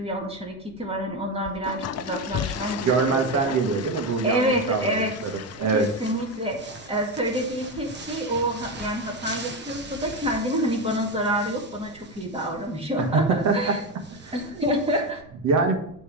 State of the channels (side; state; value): right; noise; rumble, 24 dB below the sound